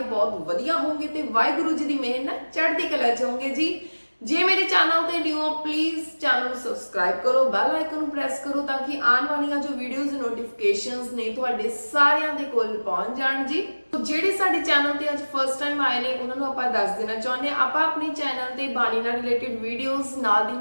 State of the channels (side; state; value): both; inverted; correlation -1.00